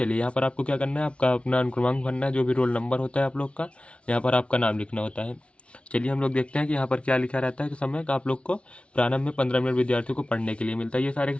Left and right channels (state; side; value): late; right; 0.060 ms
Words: यहाँ पर आपको क्या करना है, आपका अपना अनुक्रमांक भरना है, जो भी रोल नंबर होता है आप लोग का, यहाँ पर आपका नाम लिखना होता है। चलिए हम लोग देखते हैं कि यहाँ पर क्या लिखा रहता है कि समय का आप लोग को प्रारंभ में 15 मिनट विद्यार्थियों को पढ़ने के लिए मिलता है। ये